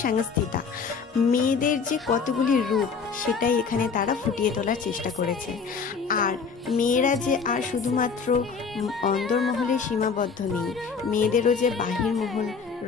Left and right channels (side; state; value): right; quieter; 5.5 dB